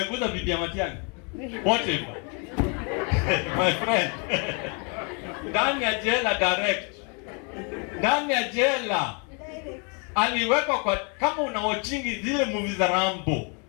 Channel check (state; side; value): quieter; right; 35.2 dB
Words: bibi ya Matiang'i. Potiphar. My friend. Ndani ya jela direct. Ndani ya jela. Aliwekwa kwa, kama unaochingi zile movie za Rambo.